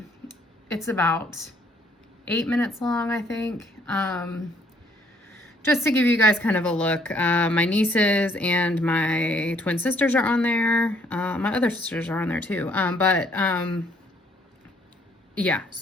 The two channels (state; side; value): normal; both; correlation 0.65